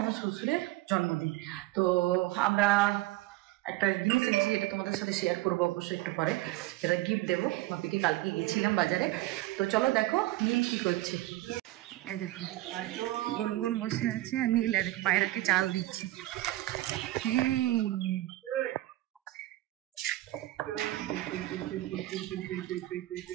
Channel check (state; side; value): quieter; left; 17.3 dB